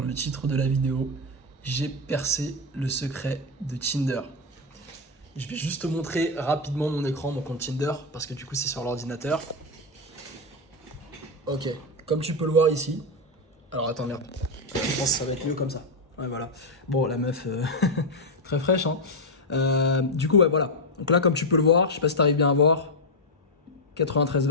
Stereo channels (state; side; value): normal; both; correlation 0.03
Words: le titre de la vidéo, j'ai percé le secret de Tinder. Je vais juste te montrer rapidement mon écran, mon compte Tinder, parce que du coup c'est sur l'ordinateur. Ok, comme tu peux le voir ici. Alors attends, merde. Je pense que ça va être mieux comme ça. Ouais, voilà. Bon, la meuf, très fraîche, hein. Du coup, ouais, voilà. Donc là, comme tu peux le voir, je sais pas si t'arrives bien à voir. 93